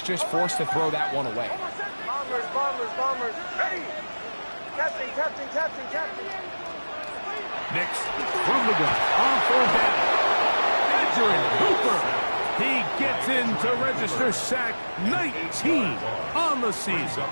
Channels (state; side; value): inverted; both; correlation -1.00